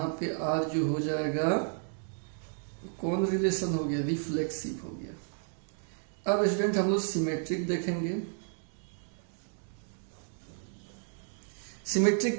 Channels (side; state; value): left; silent; digital silence